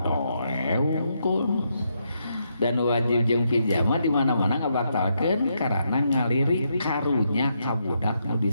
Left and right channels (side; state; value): both; inverted; correlation -0.79